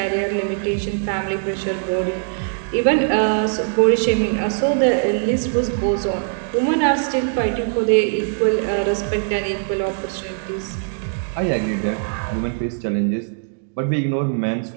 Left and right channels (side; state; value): left; silent; digital silence